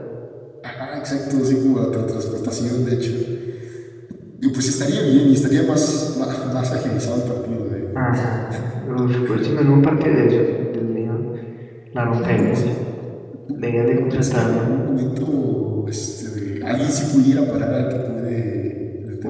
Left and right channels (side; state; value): both; identical; correlation 1.00